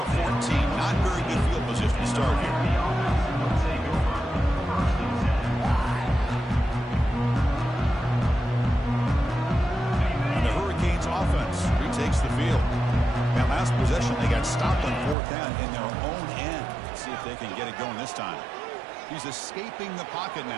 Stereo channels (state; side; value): drops out; left; at 15.2 s